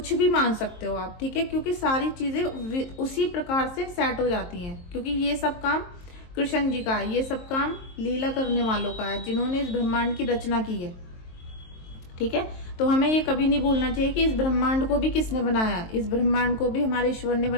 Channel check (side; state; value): right; late; 23 ms